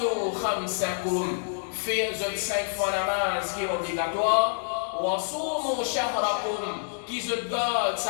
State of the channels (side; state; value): right; silent; digital silence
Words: خمسكم في 5 fois namaz qui est obligatoire وصوموا شهركم qui se garde